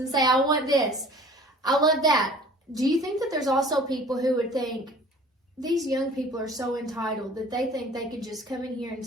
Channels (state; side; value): normal; both; correlation 0.48